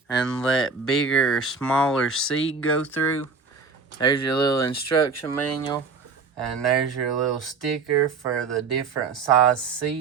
and let bigger or smaller seed go through. There's your little instruction manual, and there's your little sticker for the different size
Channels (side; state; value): left; quieter; 4.7 dB